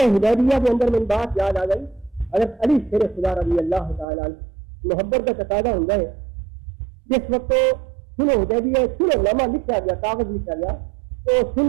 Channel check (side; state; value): left; drops out; at 4.0 s